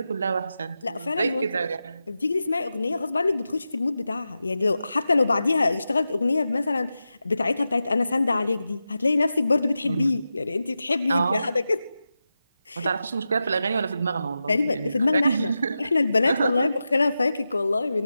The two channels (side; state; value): both; inverted; correlation -0.91